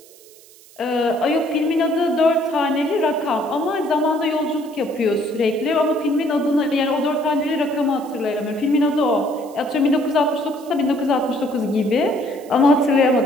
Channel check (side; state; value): right; noise; hiss, 24 dB below the sound